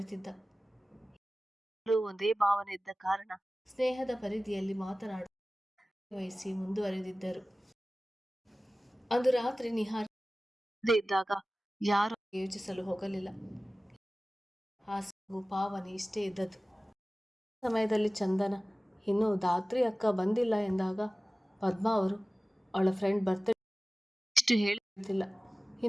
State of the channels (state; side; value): normal; both; correlation 0.97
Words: ಒಂದೇ ಭಾವನೆ ಇದ್ದ ಕಾರಣ ಸ್ನೇಹದ ಪರಿಧಿಯಲ್ಲಿ ಮಾತನಾಡ ವಹಿಸಿ ಮುಂದುವರೆದಿದ್ದರು. ಅಂದು ರಾತ್ರಿ ನಿಹಾರ್ ಇದ್ದಾಗ ಯಾರು ಯೋಚಿಸಲು ಹೋಗಲಿಲ್ಲ. ಹಾಸು ಪಾವನಿ ಇಷ್ಟೇ ಇದ್ದದ್ದು. ಸಮಯದಲ್ಲಿ ಚಂದನ ಇನ್ನು ಧಾತ್ರಿ ಅಕ್ಕ ಬಂದಿಲ್ಲ ಎಂದಾಗ ಪದ್ಮಾ ಅವರು ಅವಳ ಫ್ರೆಂಡ್ ಬರ್ತ್ಡೇ ಇಷ್ಟು ಹೇಳಿಲ್ಲ,